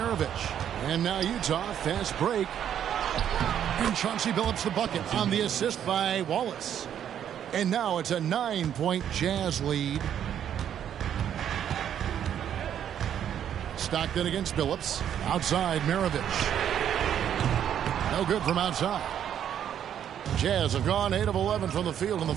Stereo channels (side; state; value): left; quieter; 9.6 dB